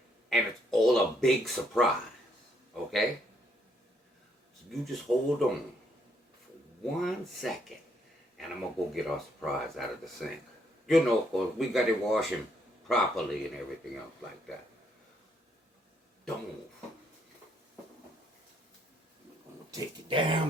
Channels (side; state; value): both; normal; correlation 0.71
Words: and it's all a big surprise, okay? So you just hold on for 1 second, and I'm gonna go get our surprise out of the sink. You know, 'cause we got to wash him properly and everything else like that. Don't move. I'm gonna take it